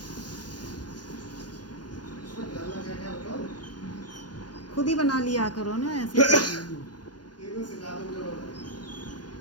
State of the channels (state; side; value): late; right; 0.70 ms